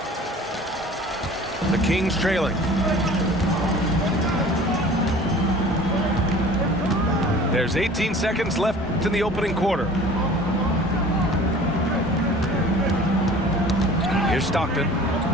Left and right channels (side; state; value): both; normal; correlation 0.45